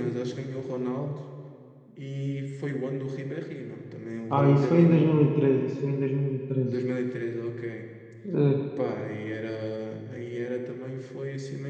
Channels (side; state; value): both; identical; correlation 1.00